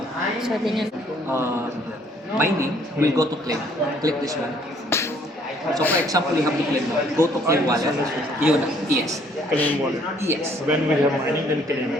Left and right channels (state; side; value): normal; both; correlation 0.62